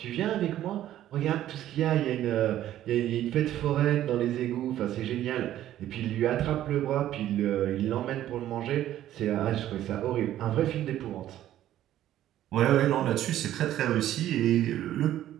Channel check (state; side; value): quieter; left; 12.6 dB